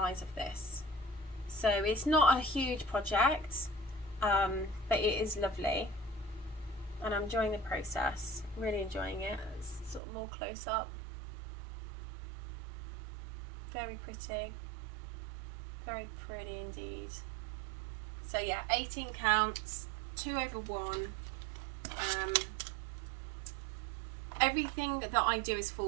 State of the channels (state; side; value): drops out; left; at 10.0 s